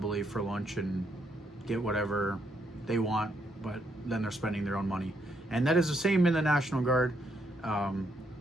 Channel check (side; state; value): both; normal; correlation 0.75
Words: for lunch and get whatever they want, but then they're spending their own money. And that is the same in the National Guard.